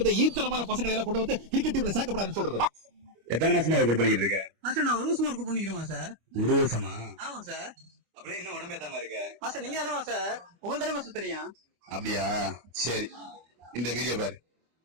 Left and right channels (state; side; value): late; left; 25 ms